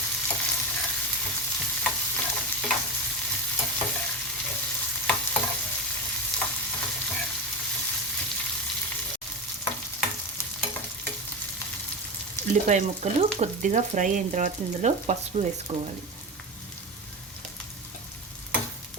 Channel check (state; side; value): normal; both; correlation 0.21